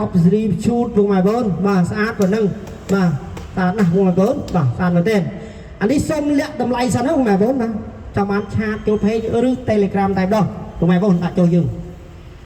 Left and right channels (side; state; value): both; identical; correlation 1.00